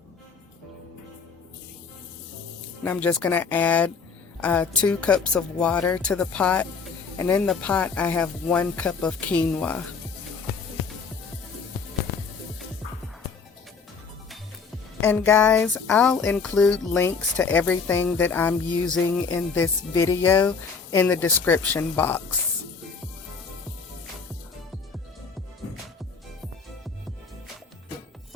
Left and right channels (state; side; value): quieter; right; 5.2 dB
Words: And I'm just going to add 2 cups of water to the pot. And in the pot, I have 1 cup of quinoa. And guys, I'll include links to everything that I'm using in this video in the description box.